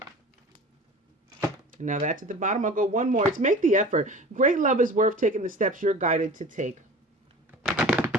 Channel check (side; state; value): both; normal; correlation 0.39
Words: Now that's at the bottom. I'll go one more. It's make the effort. Great love is worth taking the steps you're guided to take.